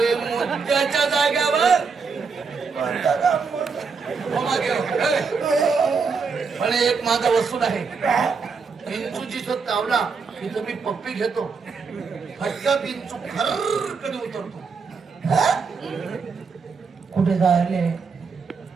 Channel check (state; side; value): quieter; left; 5.2 dB